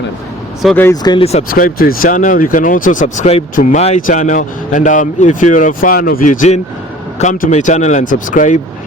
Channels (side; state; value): both; normal; correlation 0.47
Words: So guys, kindly subscribe to his channel. You can also subscribe to my channel, and if you're a fan of Eugene, come to my channel and subscribe.